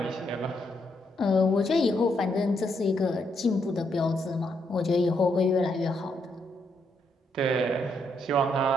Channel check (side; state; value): both; normal; correlation 0.77